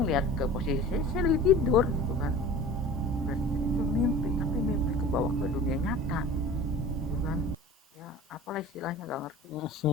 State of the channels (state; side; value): normal; both; correlation 0.40